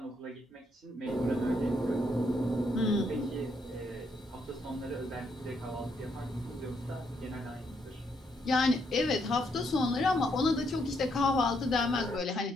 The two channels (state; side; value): normal; both; correlation 0.75